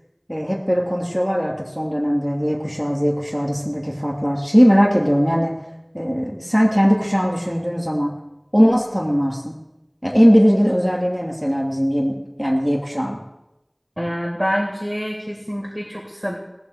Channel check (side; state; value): both; identical; correlation 1.00